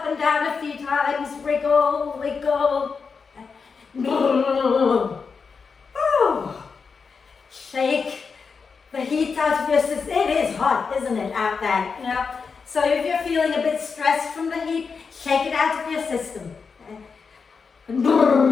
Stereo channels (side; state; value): right; quieter; 5.3 dB